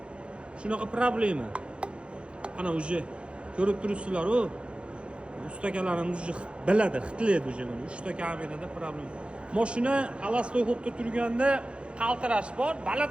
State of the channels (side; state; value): left; late; 0.058 ms